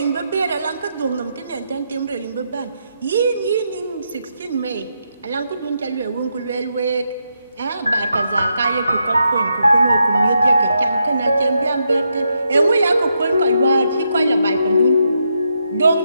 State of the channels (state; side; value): inverted; both; correlation -0.81